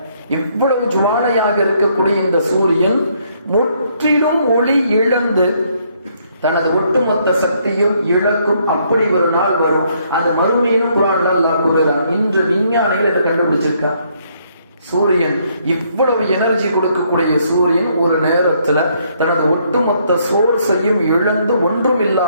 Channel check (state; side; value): inverted; both; correlation -0.69